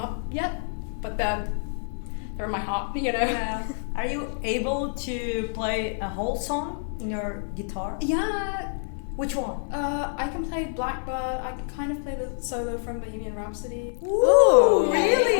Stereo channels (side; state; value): right; silent; digital silence